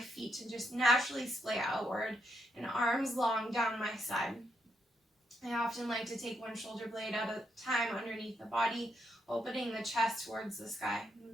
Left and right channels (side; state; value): both; normal; correlation 0.79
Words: to just naturally splay outward, and arms long down my side. I often like to take one shoulder blade at a time underneath the body, opening the chest towards the sky.